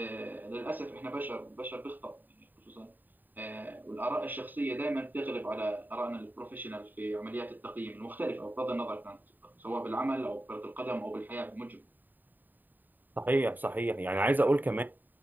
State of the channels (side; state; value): left; late; 0.089 ms